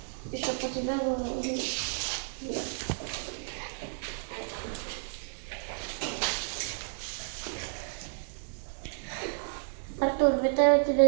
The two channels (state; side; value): silent; left; digital silence